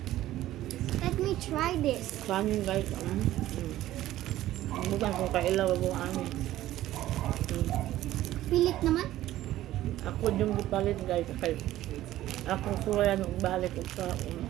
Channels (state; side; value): quieter; left; 14.5 dB